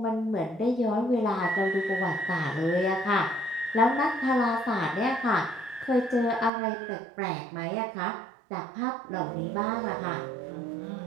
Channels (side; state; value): left; drops out; at 6.5 s